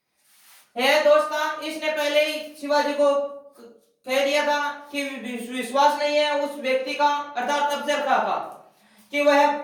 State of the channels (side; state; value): both; identical; correlation 1.00